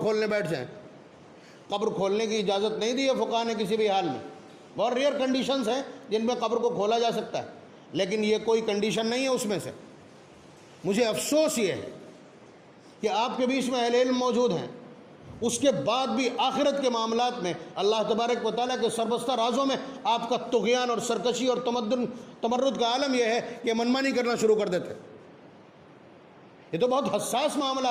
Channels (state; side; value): identical; both; correlation 1.00